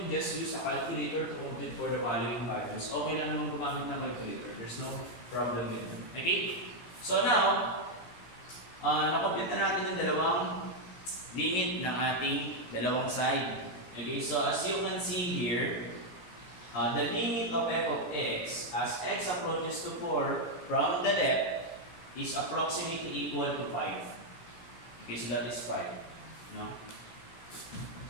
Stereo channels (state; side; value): late; right; 17 ms